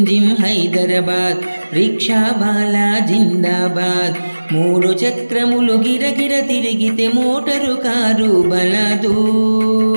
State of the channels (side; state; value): both; inverted; correlation -1.00